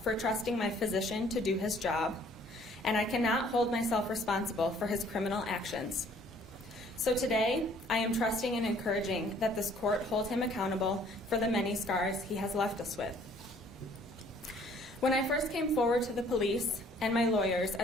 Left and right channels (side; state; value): both; normal; correlation 0.58